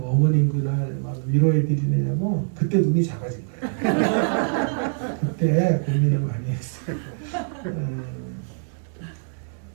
어머님 그날 막 위로해 드리느냐고 그때 눈이 작아진 거야. 그때 고민을 많이 했어요.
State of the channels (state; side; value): silent; left; digital silence